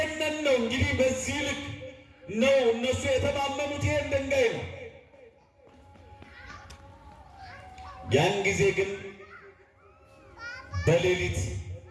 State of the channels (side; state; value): both; identical; correlation 1.00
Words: ነው። እንግዲህ በዚህ ልክ ነው እነሱ የተማመኑት፣ ይህን ድንጋይ ነው። ያን ጊዜ ግን በሌሊት